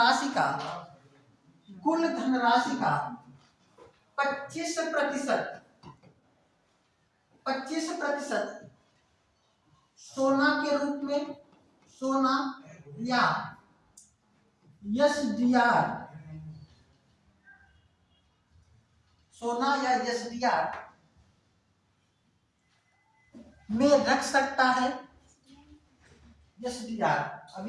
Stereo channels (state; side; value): identical; both; correlation 1.00